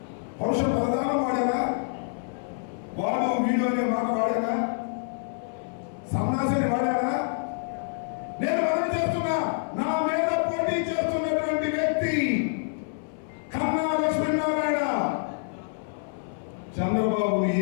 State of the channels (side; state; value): right; silent; 60 dB below the other